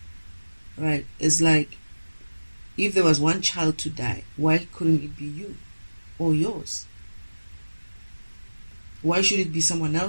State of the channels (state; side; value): inverted; both; correlation -1.00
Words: right? It's like, if there was one child to die, why couldn't it be you? or yours? Why should it be someone